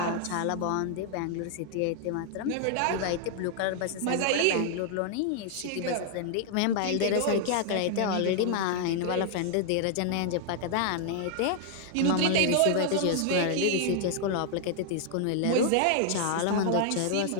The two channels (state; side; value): different; both; correlation 0.00